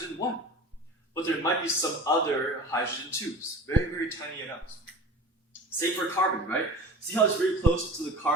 1. But there might be some other hydrogen 2s, very, very tiny amounts. Same for carbon, right? See how it's very close to the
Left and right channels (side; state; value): both; normal; correlation 0.37